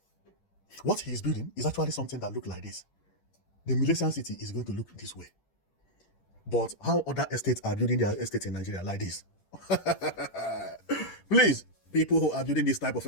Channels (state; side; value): late; right; 10 ms